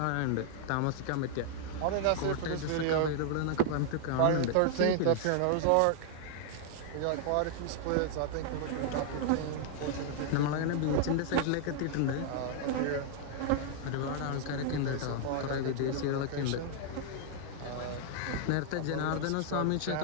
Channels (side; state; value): both; different; correlation -0.01